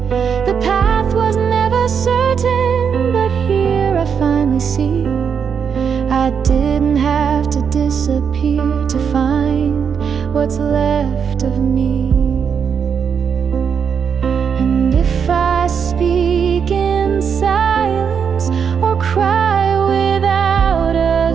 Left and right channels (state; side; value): quieter; left; 6.9 dB